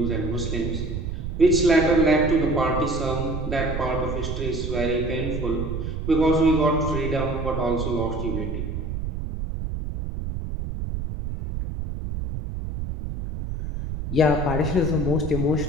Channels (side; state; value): right; noise; rumble, 5 dB below the sound